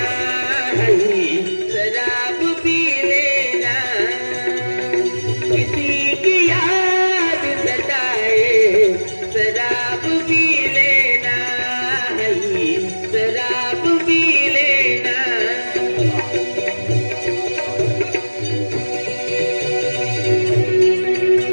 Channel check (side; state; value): both; inverted; correlation -1.00